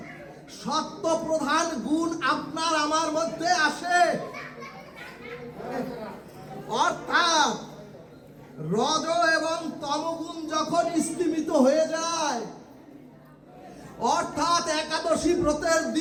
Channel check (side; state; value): both; identical; correlation 1.00